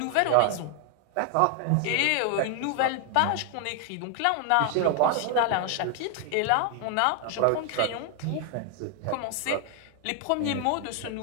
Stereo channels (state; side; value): different; both; correlation 0.00